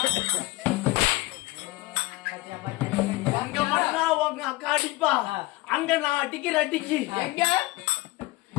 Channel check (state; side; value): quieter; right; 20.4 dB